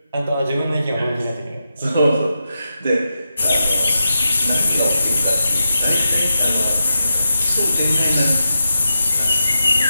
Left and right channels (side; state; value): both; inverted; correlation -0.88